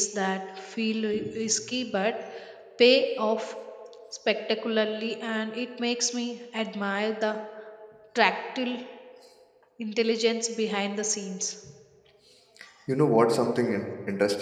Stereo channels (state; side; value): identical; both; correlation 1.00